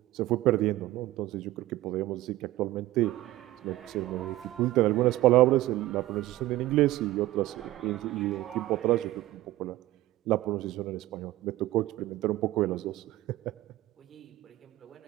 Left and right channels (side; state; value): left; quieter; 16.6 dB